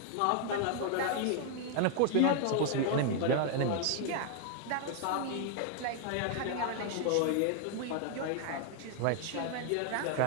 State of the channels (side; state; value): both; different; correlation 0.00